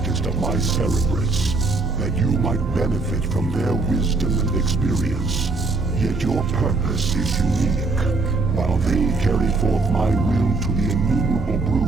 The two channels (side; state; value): left; quieter; 3.6 dB